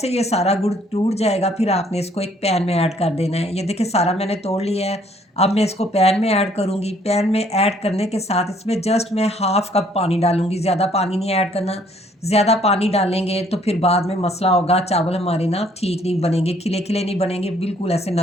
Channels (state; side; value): normal; both; correlation 0.63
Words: ये सारा गुड़ टूट जाएगा, फिर आपने इसको एक पैन में ऐड कर देना है। ये देखिए सारा मैंने तोड़ लिया है। अब मैं इसको पैन में ऐड करूँगी। पैन में ऐड करने के साथ इसमें जस्ट मैं हाफ़ कप पानी डालूँगी, ज़्यादा पानी नहीं ऐड करना। ज़्यादा पानी डालेंगे तो फिर बाद में मसला होगा, चावल हमारे ना ठीक नहीं बनेंगे, खिले-खिले नहीं बनेंगे, बिल्कुल ऐसे